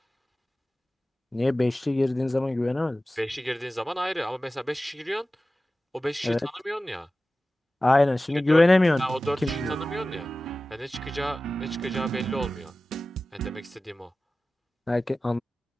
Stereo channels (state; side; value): normal; both; correlation 0.96